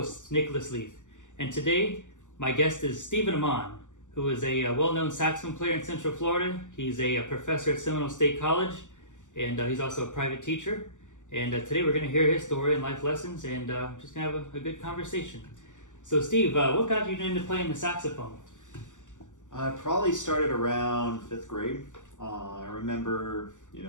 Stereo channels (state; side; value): late; right; 0.86 ms